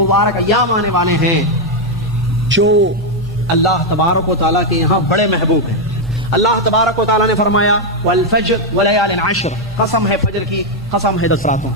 ایام آنے والے ہیں جو اللہ تبارک و تعالیٰ کے یہاں بڑے محبوب ہیں۔ اللہ تبارک و تعالیٰ نے فرمایا والفجر ولیال عشر، قسم ہے فجر کی، قسم ہے 10 راتوں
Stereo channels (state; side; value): normal; both; correlation 0.01